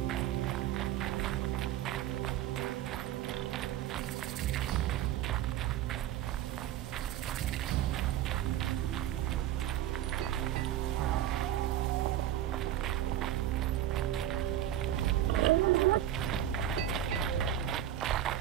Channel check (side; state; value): left; quieter; 11.8 dB